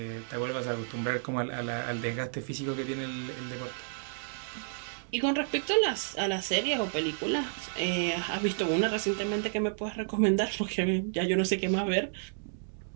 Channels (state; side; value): silent; left; digital silence